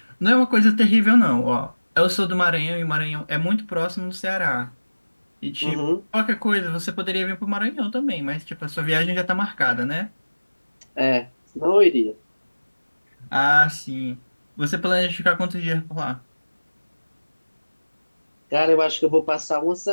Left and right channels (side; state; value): both; inverted; correlation -1.00